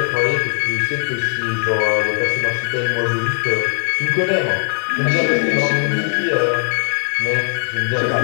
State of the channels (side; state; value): right; silent; digital silence